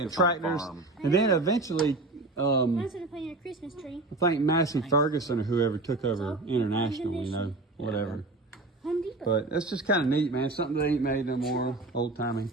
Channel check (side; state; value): left; quieter; 3.0 dB